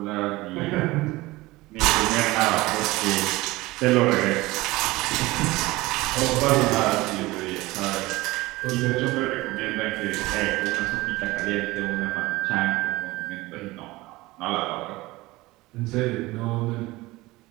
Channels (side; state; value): left; quieter; 20.1 dB